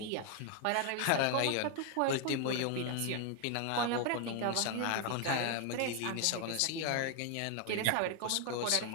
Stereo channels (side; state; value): both; different; correlation 0.01